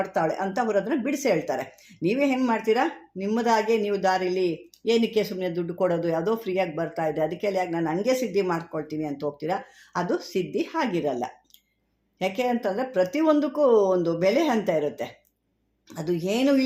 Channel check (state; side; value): identical; both; correlation 1.00